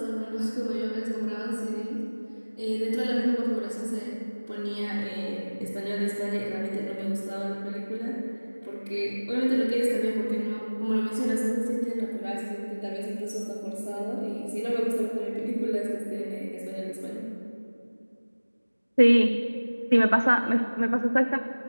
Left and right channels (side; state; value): both; inverted; correlation -1.00